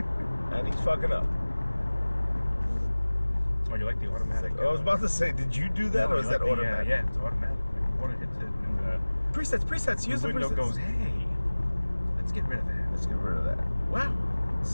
And he's fucking up. Oh, you like the automatic? I was about to say, did you do that, No, or you is like that the, automatic? yeah, it's automatic. Like, water hits it, and Presets. Use the the window presets. goes, hey, let's get rid of that. Let's get rid of that. Wow.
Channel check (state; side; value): inverted; both; correlation -1.00